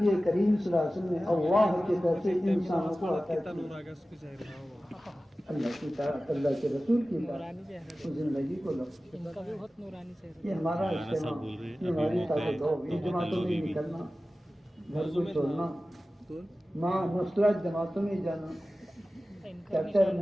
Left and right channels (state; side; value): normal; both; correlation 0.96